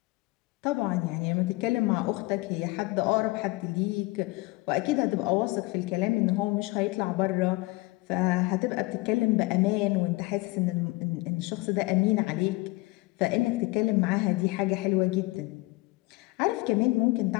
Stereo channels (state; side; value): quieter; right; 22.8 dB